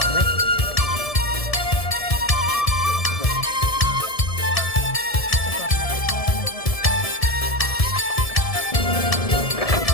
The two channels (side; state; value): right; late; 1.7 ms